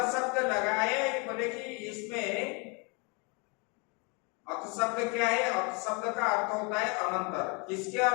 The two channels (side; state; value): right; quieter; 31.9 dB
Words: शब्द लगाए, बोले कि इसमें अथ शब्द क्या है? अथ शब्द का अर्थ होता है अनंतर। किसके